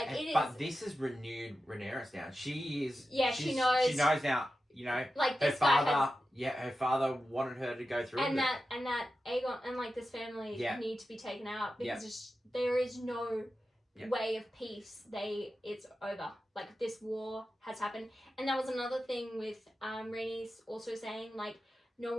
this has renewed Rhaenyra's down. She is. Yeah, she knows. She knows now. Like her father. Her father wanted her to go through. And that Aegon and like this family need to be taken out because there is no way of peace. It's over. Like this war has happened, and that was another thing with Rhaenys also saying like no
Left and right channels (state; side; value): normal; both; correlation 0.92